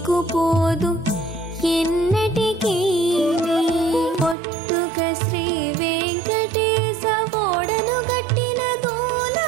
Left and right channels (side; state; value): left; drops out; at 4.4 s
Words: పోదు ఎన్నటికీ పొట్టుక శ్రీ వెంకటేశ ఓడను గట్టిన